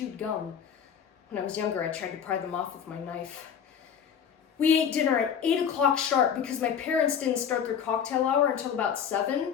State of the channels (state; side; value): quieter; right; 7.9 dB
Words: gum. When I was younger, I tried to pry them off with my knife. We ate dinner at 8 o'clock sharp because my parents didn't start their cocktail hour until about